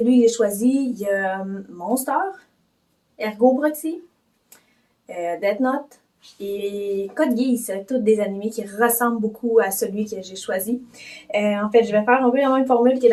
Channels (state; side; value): identical; both; correlation 1.00